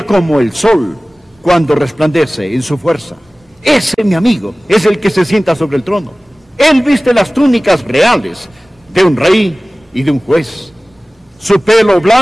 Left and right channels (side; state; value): both; normal; correlation 0.98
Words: como el sol cuando resplandece en su fuerza. Ese, mi amigo, es el que se sienta sobre el trono. Él viste las túnicas reales de un rey y de un juez. Su pelo